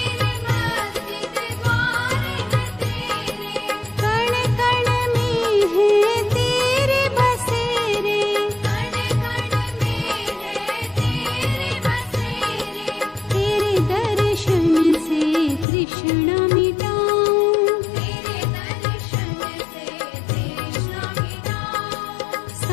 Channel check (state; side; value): drops out; right; at 15.7 s